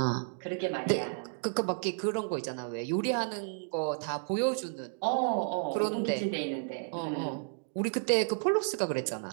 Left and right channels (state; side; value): silent; left; digital silence